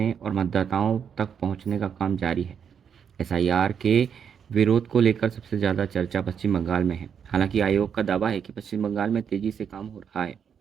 और मतदाताओं तक पहुंचने का काम जारी है। SIR के विरोध को लेकर सबसे ज़्यादा चर्चा पश्चिम बंगाल में है। हालांकि आयोग का दावा है कि पश्चिम बंगाल में तेज़ी से काम हो रहा है।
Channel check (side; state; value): left; quieter; 7.5 dB